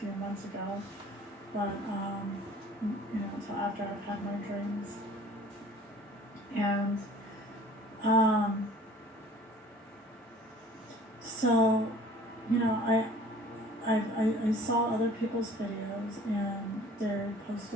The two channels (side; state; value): both; normal; correlation 0.49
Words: months ago, but until after I've had my dreams. And so, I saw other people's videos, and they